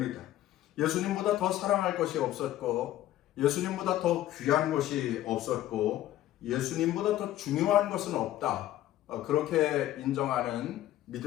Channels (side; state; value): right; quieter; 13.7 dB